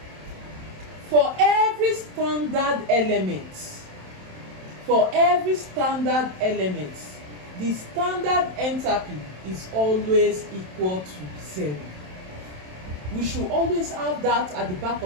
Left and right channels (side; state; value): left; late; 27 ms